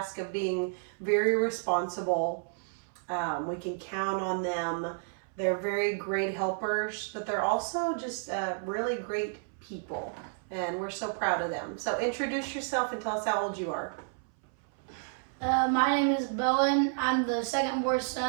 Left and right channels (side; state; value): left; silent; 57 dB below the other